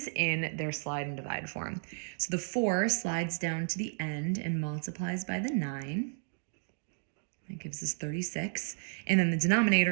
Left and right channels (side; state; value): left; silent; digital silence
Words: in their slide and divide form. So the 4 slides down to the end and multiplies by the 9. That gives us 36. And then the